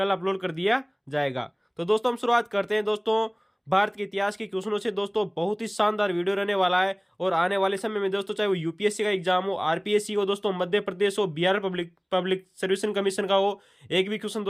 अपलोड कर दिया जाएगा। तो दोस्तों हम शुरुआत करते हैं दोस्तों भारत के इतिहास के क्वेश्चनों से। दोस्तों बहुत ही शानदार वीडियो रहने वाला है और आने वाले समय में दोस्तों चाहे वो यूपीएससी का एग्जाम हो, आरपीएससी हो, दोस्तों मध्य प्रदेश हो, Bihar public public service commission का हो, एक भी क्वेश्चन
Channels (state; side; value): identical; both; correlation 1.00